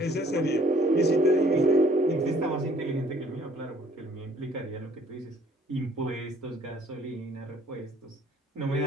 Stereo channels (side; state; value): both; normal; correlation 0.57